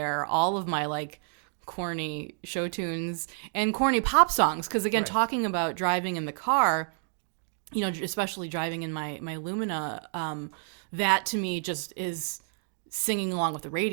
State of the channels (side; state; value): left; silent; 58 dB below the other